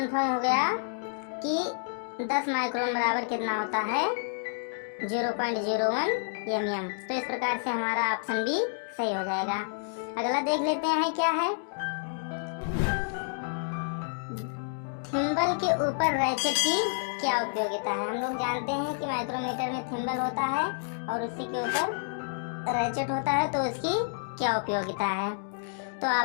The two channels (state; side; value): silent; right; digital silence